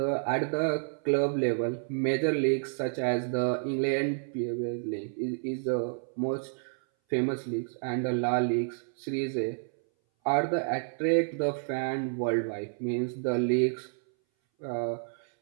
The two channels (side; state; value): left; silent; 58 dB below the other